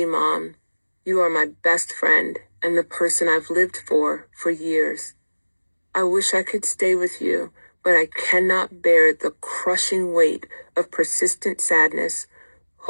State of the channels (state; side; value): inverted; both; correlation -1.00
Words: Mom. You are my best friend and the person I've lived for years. I wish I could stay with you, but I cannot bear the crushing weight of persistent sadness,